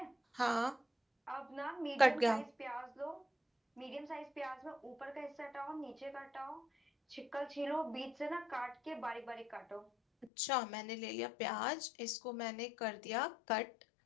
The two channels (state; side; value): drops out; right; at 10.3 s